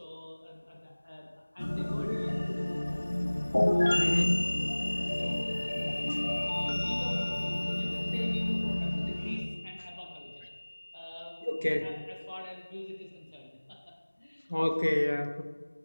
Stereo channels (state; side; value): inverted; both; correlation -1.00